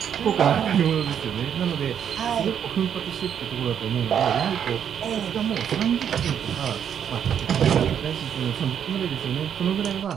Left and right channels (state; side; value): quieter; left; 8.6 dB